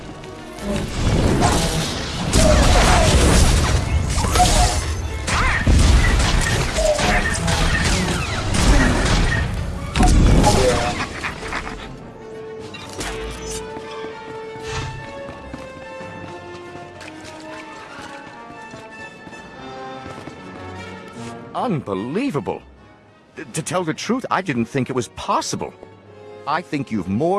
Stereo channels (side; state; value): both; identical; correlation 1.00